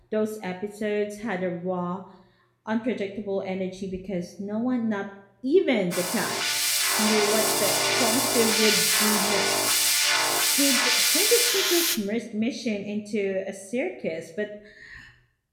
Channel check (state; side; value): identical; both; correlation 1.00